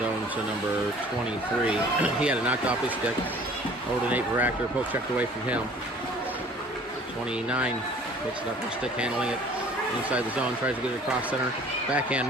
to number 23. He had it knocked off his stick. Over to Nate Baractor. Poke checked away from him. 29 picks it up with stick, handling it inside the zone. Tries to get it across center.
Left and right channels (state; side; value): normal; both; correlation 0.51